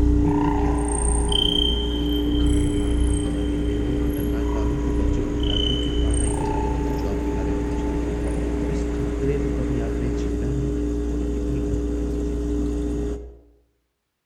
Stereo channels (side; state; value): both; identical; correlation 1.00